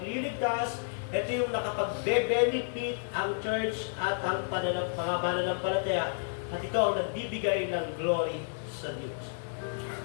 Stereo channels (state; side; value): silent; right; digital silence